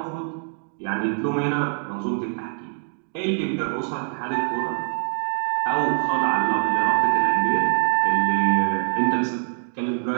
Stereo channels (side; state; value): left; silent; digital silence